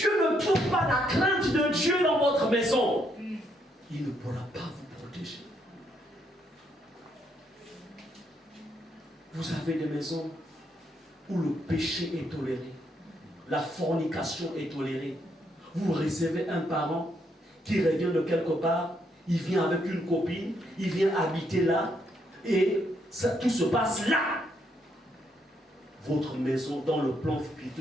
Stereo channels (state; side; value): normal; both; correlation 0.74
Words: ne trouve pas la crainte de Dieu dans votre maison, il ne pourra pas vous protéger. Vous avez des maisons où le péché est toléré, la fornication est tolérée. Vous recevez un parent qui revient de quelque part, il vient avec une copine, il vient habiter là, et ça, tout se passe là. Votre maison, dans le plan